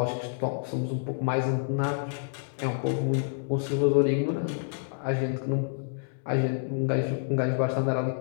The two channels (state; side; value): silent; right; digital silence